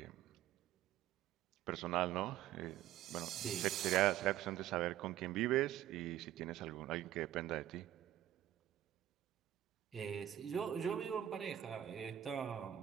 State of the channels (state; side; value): quieter; left; 12.1 dB